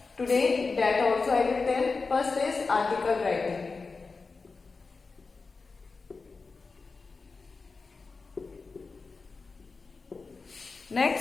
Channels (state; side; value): quieter; right; 4.3 dB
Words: today, that also I will tell. First is article writing.